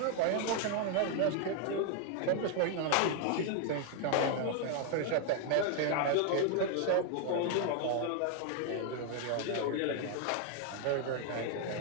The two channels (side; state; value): both; different; correlation 0.00